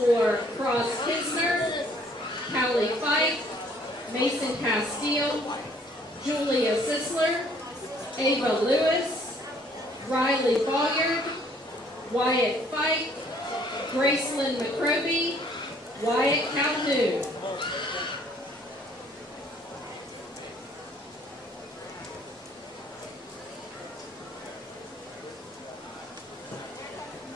Cross Kisner, Callie Fife, Mason Castile, Julia Sisler, Ava Lewis, Riley Boyard, Wyatt Fike, Gracelyn McCroby, Wyatt Calhoun.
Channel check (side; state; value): both; normal; correlation 0.61